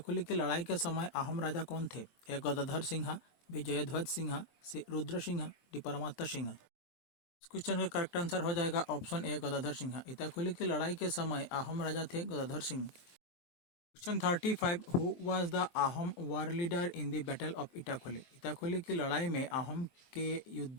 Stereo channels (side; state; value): right; late; 23 ms